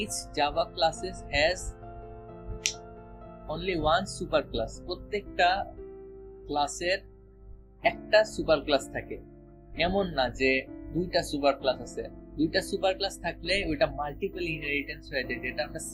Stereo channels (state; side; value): identical; both; correlation 1.00